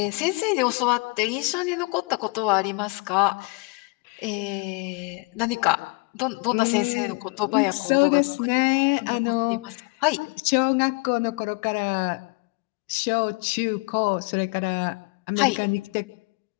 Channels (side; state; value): right; quieter; 31.2 dB